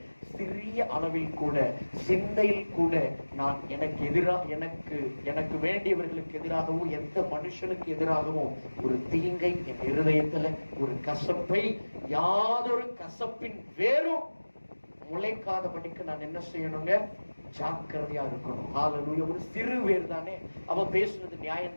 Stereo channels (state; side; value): inverted; both; correlation -1.00